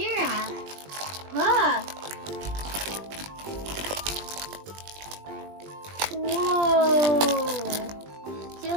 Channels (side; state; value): left; late; 20 ms